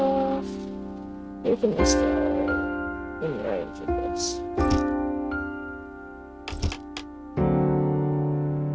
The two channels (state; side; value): identical; both; correlation 1.00